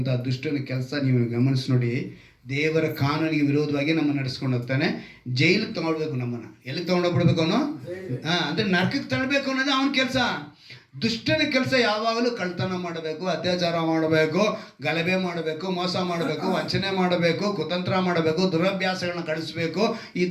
ದುಷ್ಟನ ಕೆಲಸ ನೀವು ಗಮನಿಸಿ ನೋಡಿ. ದೇವರ ಕಾನೂನಿಗೆ ವಿರೋಧವಾಗಿ ನಮ್ಮನ್ನು ನಡೆಸ್ಕೊಂಡು ಹೋಗ್ತಾನೆ. ಜೈಲಿಗೆ ತಗೊಳ್ಬೇಕು, ನಮ್ಮನ್ನು ಎಲ್ಲಿಗೆ ತಗೊಂಡೋಗ್ಬಿಡ್ಬೇಕು ಅವನು, ಅಂದರೆ ನರಕಕ್ಕೆ ತಳ್ಳಬೇಕು ಅನ್ನೋದು ಅವನ ಕೆಲಸ. ದುಷ್ಟನ ಕೆಲಸ ಯಾವಾಗಲೂ ಕಳ್ತನ ಮಾಡಬೇಕು, ಅತ್ಯಾಚಾರ ಮಾಡಬೇಕು, ಗಲಭೆ ಮಾಡಬೇಕು, ಮೋಸ ಮಾಡಬೇಕು, ವಂಚನೆ ಮಾಡಬೇಕು, ಕುತಂತ್ರ ಮಾಡಬೇಕು, ದುರಭ್ಯಾಸಗಳನ್ನ ಕಳಿಸ್ಬೇಕು. ಈ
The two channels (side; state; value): both; identical; correlation 1.00